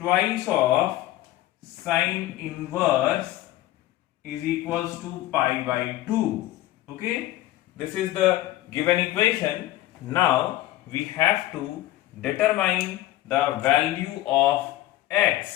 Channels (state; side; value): quieter; right; 15.3 dB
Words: of sine inverse is equals to pi by 2. Okay, this is the given equation. Now we have to determine the value of